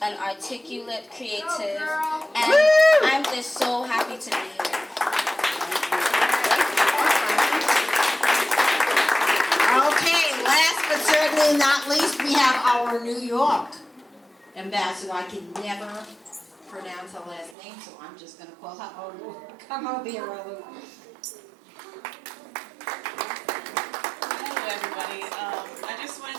an articulate, creative, and I'm just so happy to be here. Okay, last but certainly not least, we have our New York ambassador. I can never pronounce her last name, so I'm just going to call her Olu. Come over here, Olu. everybody. I just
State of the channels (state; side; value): drops out; left; at 17.6 s